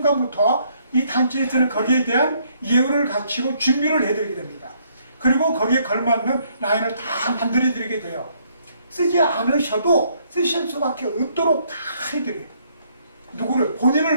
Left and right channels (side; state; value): both; inverted; correlation -0.68